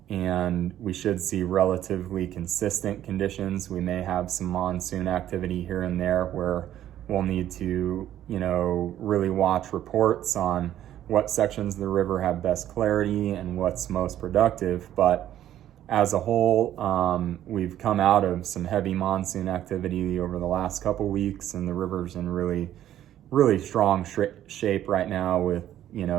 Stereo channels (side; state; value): left; quieter; 11.9 dB